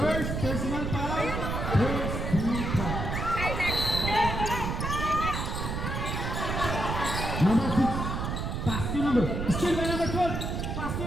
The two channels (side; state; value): right; noise; rumble, 2 dB below the sound